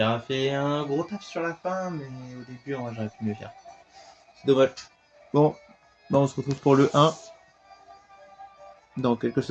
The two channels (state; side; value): identical; both; correlation 1.00